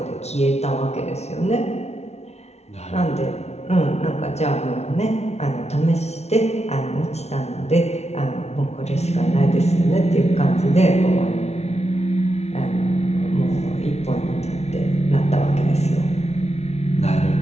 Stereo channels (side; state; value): right; late; 0.31 ms